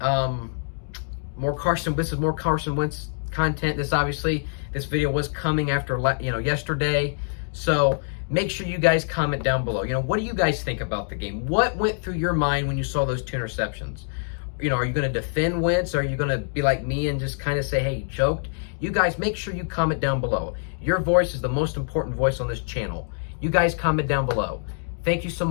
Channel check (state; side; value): silent; right; digital silence